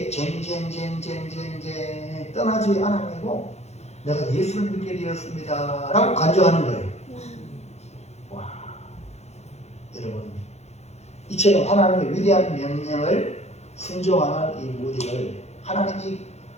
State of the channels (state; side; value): late; right; 0.31 ms